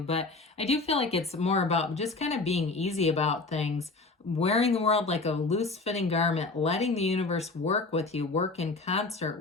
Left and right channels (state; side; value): quieter; right; 3.5 dB